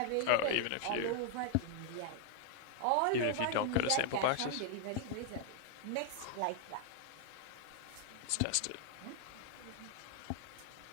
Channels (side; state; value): both; different; correlation 0.00